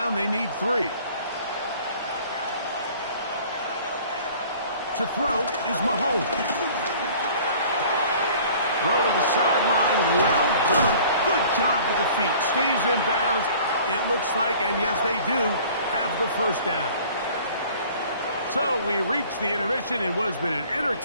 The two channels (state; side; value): inverted; both; correlation -0.50